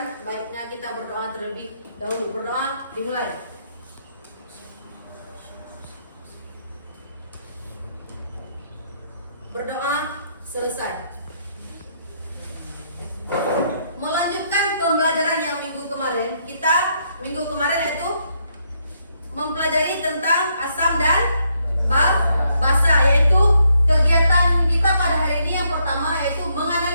baiknya kita berdoa terlebih dahulu. Berdoa, dimulai. Berdoa, selesai. Melanjutkan pembelajaran yang minggu kemarin, minggu kemarin yaitu mempelajari tentang asam dan basa, yaitu kegiatan kita pada hari ini yang pertama yaitu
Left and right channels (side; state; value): both; inverted; correlation -0.74